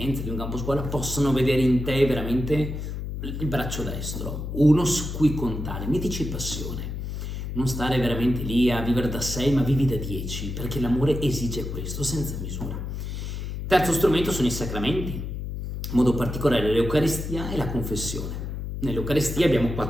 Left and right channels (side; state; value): left; noise; hum, 5 dB below the sound